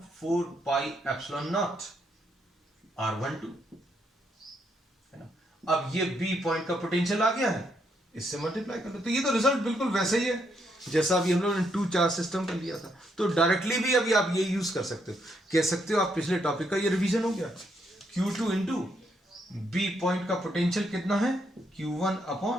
4 pi epsilon not r12 है ना। अब ये बी पॉइंट का पोटेंशियल आ गया है, इससे मल्टीप्लाई कर दो, तो ये तो रिजल्ट बिल्कुल वैसे ही है जैसा अभी हम लोगों ने 2 चार्ज सिस्टम कर लिया था। तो डायरेक्टली भी अभी आप ये यूज कर सकते हो, कह सकते हो आप पिछले टॉपिक का ये रिवीजन हो गया। Q2 इंटू बी पॉइंट का पोटेंशियल कितना है, Q1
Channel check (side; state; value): both; normal; correlation 0.76